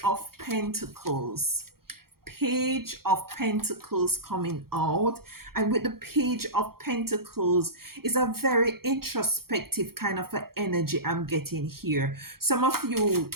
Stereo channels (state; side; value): late; left; 0.94 ms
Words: of Pentacles. Page of Pentacles coming out, and with the Page of Pentacles is a very introspective kind of an energy I'm getting here. Some of you,